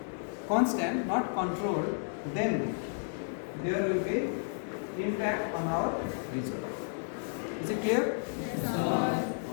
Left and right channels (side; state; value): right; silent; digital silence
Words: constant, not controlled, then there will be impact on our result. Is it clear? Yes, sir.